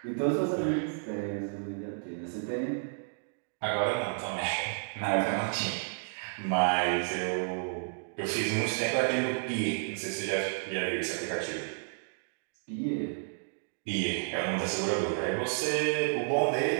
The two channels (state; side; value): silent; left; digital silence